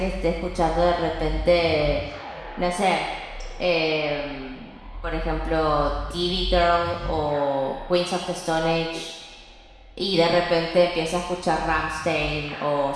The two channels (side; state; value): both; identical; correlation 1.00